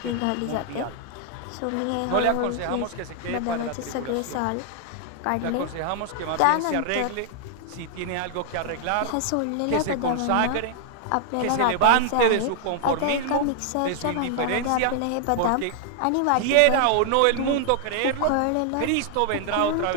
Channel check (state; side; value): different; both; correlation 0.00